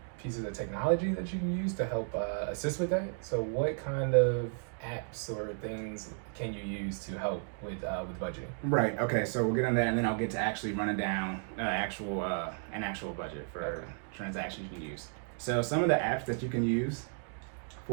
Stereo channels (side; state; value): left; silent; 55 dB below the other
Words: pieces of technology that you can use to help assist with that. So, what kind of apps or things can you use to help with budgeting? Right. Okay. So we'll get on that, and then I'll get to actually running down an actual budget for transactions you can use. So some of the apps that you can use